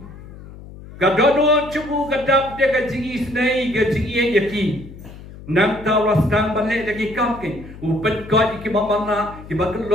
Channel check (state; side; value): noise; left; hum, 16 dB below the sound